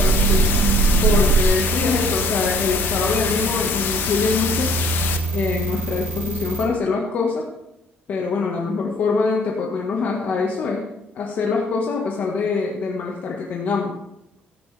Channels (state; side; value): normal; both; correlation 0.60